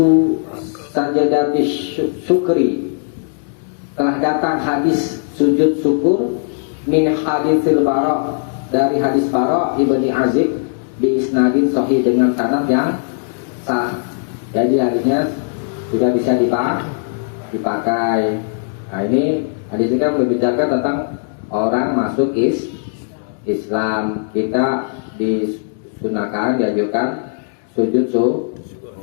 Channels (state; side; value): silent; right; digital silence